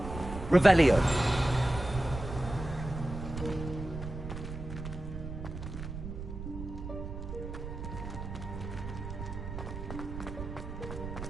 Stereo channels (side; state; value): right; noise; rumble, 8 dB below the sound